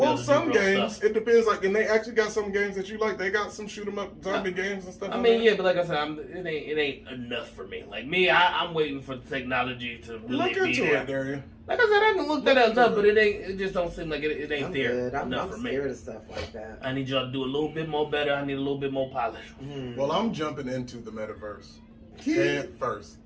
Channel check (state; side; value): identical; both; correlation 1.00